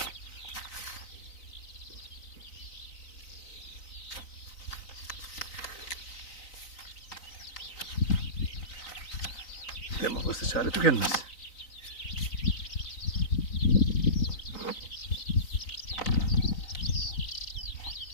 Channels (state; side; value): late; right; 3.9 ms